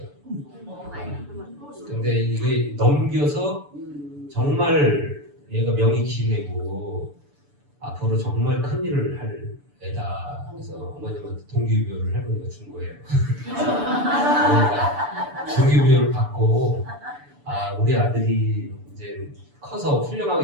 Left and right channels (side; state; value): left; late; 6.9 ms